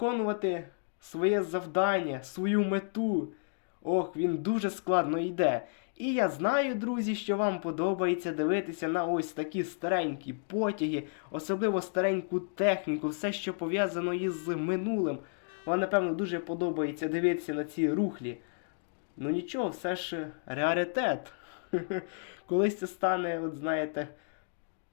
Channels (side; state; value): right; silent; digital silence